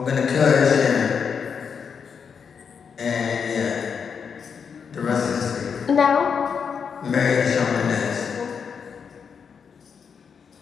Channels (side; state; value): right; quieter; 6.5 dB